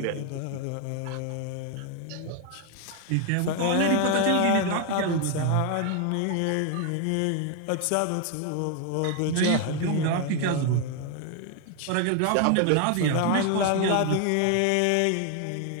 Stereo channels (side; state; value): both; different; correlation 0.01